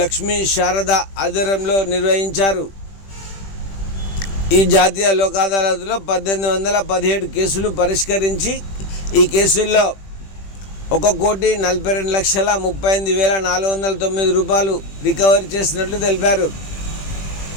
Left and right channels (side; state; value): right; late; 20 ms